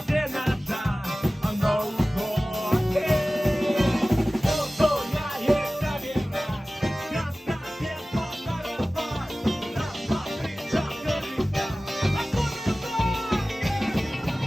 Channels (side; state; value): both; normal; correlation 0.97